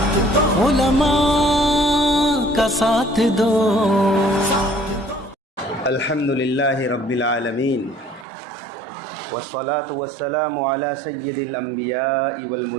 علماء کا ساتھ دو۔ الحمدللہ رب العالمین والصلاة والسلام علی سید الانبیاء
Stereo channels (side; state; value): left; drops out; at 8.2 s